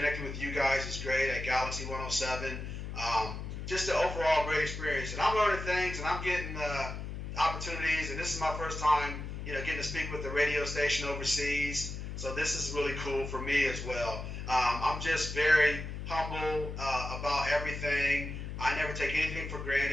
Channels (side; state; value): left; noise; hum, 7 dB below the sound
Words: with you guys is great at Galaxy 107. Just an overall great experience. And I'm learning things, and I'm getting opportunities. And this is my first time, getting to speak with the radio station overseas. So this is really cool for me as well. I'm just very humble about everything. I never take anything for